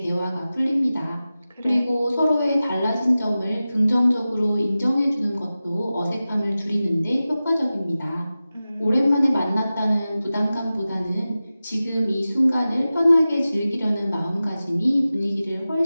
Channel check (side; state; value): both; inverted; correlation -0.95